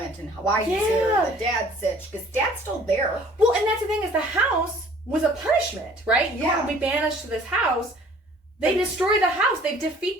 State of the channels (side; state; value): both; normal; correlation 0.53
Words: and why he's here and the dad's sitch, because dad's still there. Well, and that's the thing, is the house was a punishment, right? You want to be banished to this house. They destroy the house. They